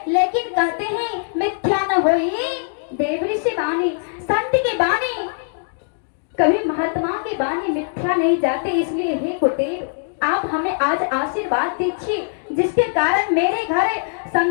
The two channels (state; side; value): silent; right; digital silence